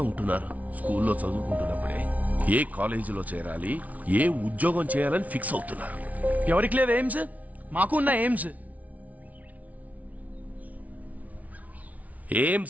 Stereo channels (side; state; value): left; late; 0.071 ms